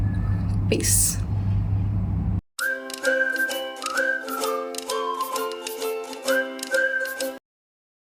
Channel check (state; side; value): identical; both; correlation 1.00